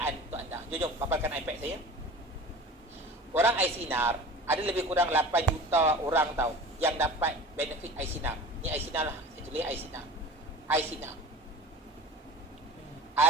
untuk anda. Jom paparkan iPad saya. Orang air sinar ada lebih kurang 8 juta orang tahu yang dapat benefit air sinar. Ni air sinar lah. Saya tulis air sinar. Air sinar.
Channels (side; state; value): both; normal; correlation 0.38